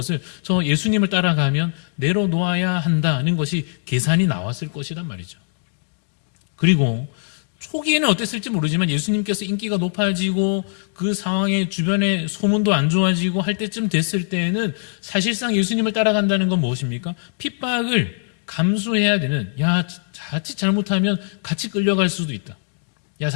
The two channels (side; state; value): right; silent; 65 dB below the other